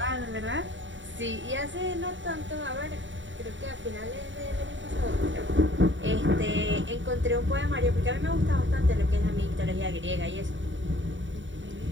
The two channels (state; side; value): late; left; 0.55 ms